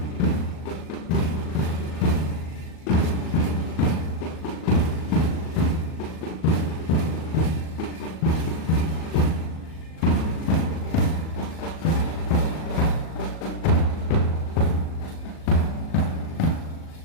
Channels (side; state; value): right; late; 38 ms